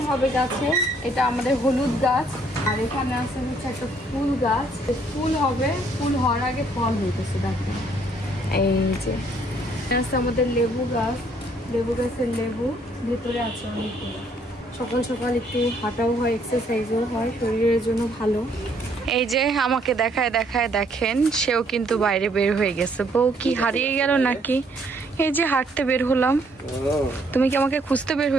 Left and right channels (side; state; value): both; normal; correlation 0.66